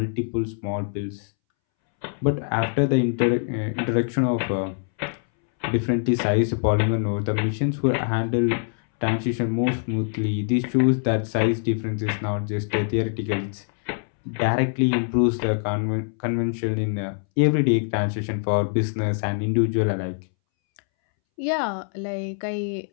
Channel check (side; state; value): right; silent; 63 dB below the other